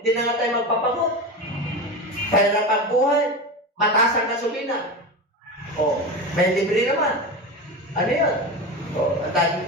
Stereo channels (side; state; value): both; normal; correlation 0.24